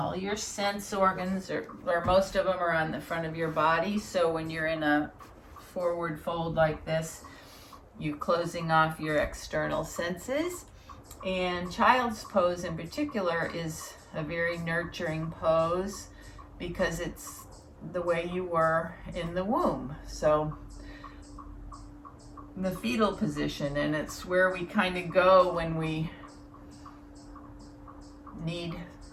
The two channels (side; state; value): both; identical; correlation 1.00